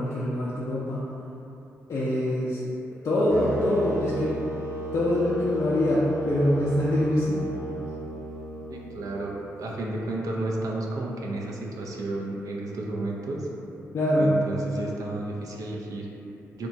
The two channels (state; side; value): normal; both; correlation 0.81